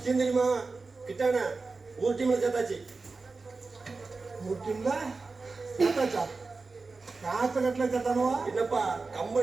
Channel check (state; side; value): quieter; left; 4.0 dB